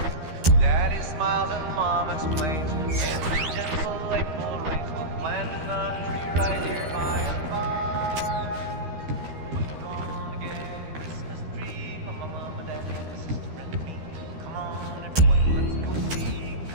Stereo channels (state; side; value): late; left; 13 ms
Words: Daddy smiles and Mom explains. In the gentle April rains will plant. We're gonna get a Christmas tree for my mom and daddy and sister and me. Come on, everyone, let's go see.